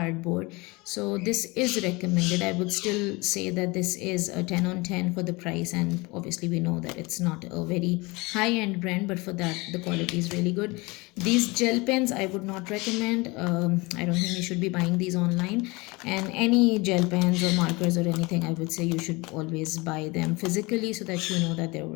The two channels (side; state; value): right; quieter; 24.8 dB